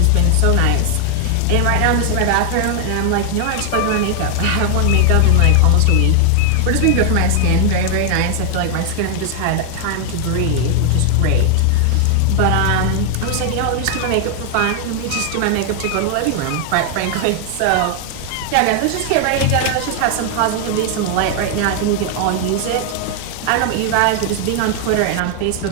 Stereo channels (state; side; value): different; both; correlation 0.00